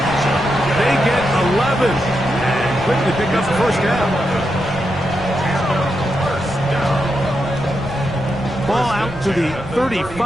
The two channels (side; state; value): right; noise; rumble, 17 dB below the sound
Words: They get 11 and quickly pick up the first down. Ball out to the